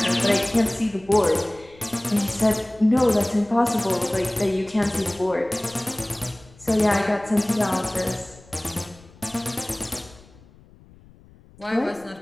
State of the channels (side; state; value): left; noise; rumble, 25 dB below the sound